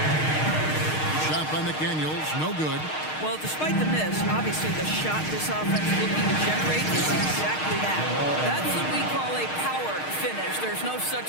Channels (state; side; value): late; right; 6.5 ms